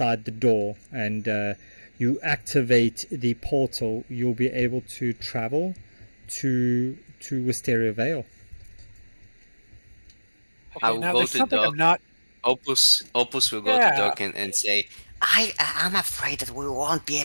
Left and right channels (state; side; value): inverted; both; correlation -1.00